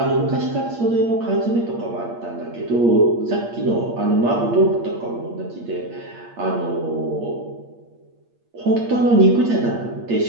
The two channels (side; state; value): left; late; 8.6 ms